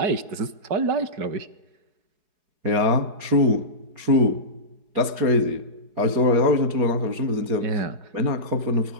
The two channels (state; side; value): late; left; 4.8 ms